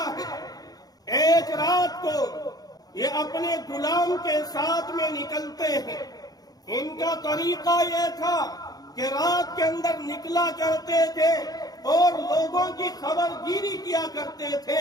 ہے۔ ایک رات کو یہ اپنے غلام کے ساتھ میں نکلتے ہیں۔ ان کا طریقہ یہ تھا کہ رات کے اندر نکلا کرتے تھے اور لوگوں کی خبر گیری کیا کرتے تھے،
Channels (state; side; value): late; right; 0.19 ms